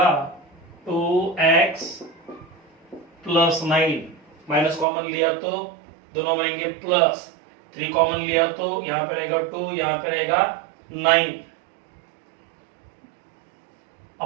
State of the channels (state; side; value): drops out; left; at 4.9 s